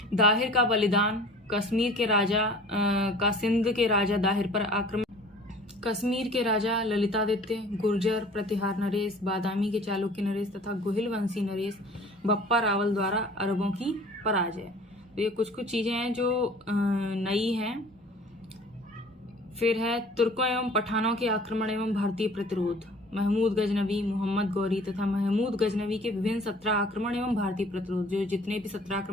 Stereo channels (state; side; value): normal; both; correlation 0.48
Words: दाहिर का बलिदान, कश्मीर के राजा का सिंध के राजा दाहिर पर आक्रमण, कश्मीर के राजा ललितादित्य, गुर्जर प्रतिहार नरेश, बादामी के चालुक्य नरेश तथा गोहिल वंशी नरेश बप्पा रावल द्वारा अरबों की पराजय। तो ये कुछ चीजें हैं जो नई हैं। फिर है तुर्कों एवं पठानों के आक्रमण एवं भारतीय प्रतिरोध, महमूद गजनवी, मोहम्मद गौरी तथा महमूद गजनवी के विभिन्न 17 आक्रमण एवं भारतीय प्रतिरोध। जो जितने भी 17